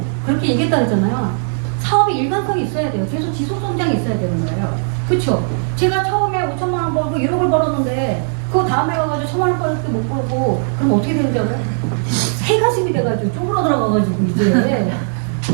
그렇게 얘기했다 그랬잖아요. 사업이 일관성이 있어야 돼요. 계속 지속 성장이 있어야 되는 거예요. 그렇죠? 제가 처음에 5천만 원 벌고 1억을 벌었는데 그 다음에 가가지고 1,000만 원 벌을 때 못 벌고 그럼 어떻게 되는지 알아요? 새 가슴이 돼가지고 쪼그러 들어가가지고 이제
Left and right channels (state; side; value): silent; left; digital silence